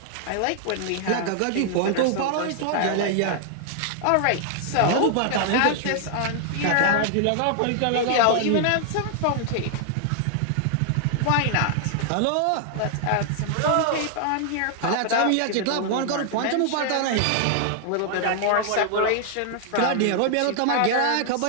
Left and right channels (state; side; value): different; both; correlation 0.00